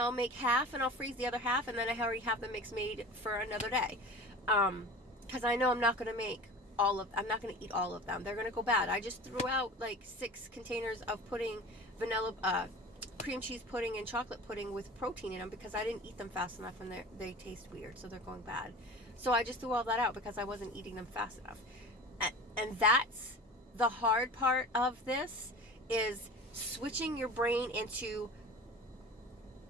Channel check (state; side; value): normal; both; correlation 0.37